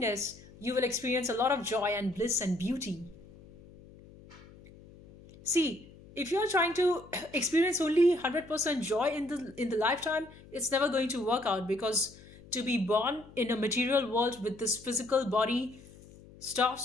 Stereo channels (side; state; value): left; noise; hum, 21 dB below the sound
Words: you will experience a lot of joy and bliss and beauty. See, if you're trying to experience only 100% joy in the lifetime, it's never going to work out, because to be born in a material world with this physical body